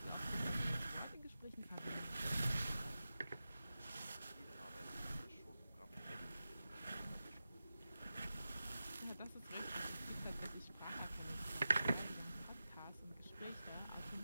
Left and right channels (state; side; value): inverted; both; correlation -0.93